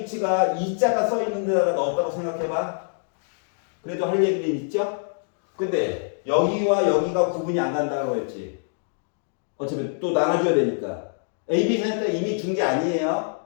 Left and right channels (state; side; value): silent; right; digital silence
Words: 2자가 써 있는 데다가 넣었다고 생각해봐. 그래도 할 얘기는 있죠? 근데 여기와 여기가 구분이 안 간다고 했지. 어차피 또 나눠줘야 되니까. A, B 센터 이미 준 게 아니에요.